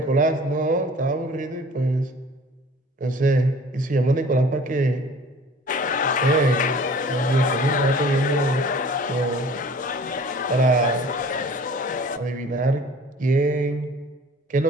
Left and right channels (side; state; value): both; normal; correlation 0.47